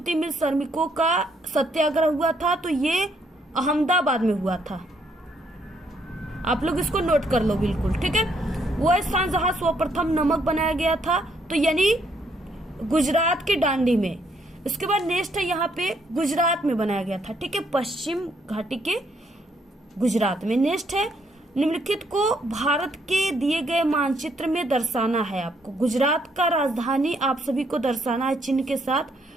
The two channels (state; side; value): normal; both; correlation 0.71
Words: मिल श्रमिकों का सत्याग्रह हुआ था, तो ये अहमदाबाद में हुआ था। आप लोग इसको नोट कर लो बिल्कुल। ठीक है, वो स्थान जहां सर्वप्रथम नमक बनाया गया था, तो यानी गुजरात के दांडी में। इसके बाद नेक्स्ट है यहाँ पे गुजरात में बनाया गया था। ठीक है, पश्चिम घाटी के गुजरात में। नेक्स्ट है निम्नलिखित को भारत के दिए गए मानचित्र में दर्शाना है। आपको गुजरात का राजधानी आप सभी को दर्शाना है चिन्ह के साथ।